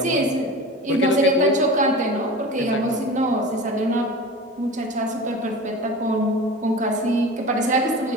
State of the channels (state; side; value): normal; both; correlation 0.34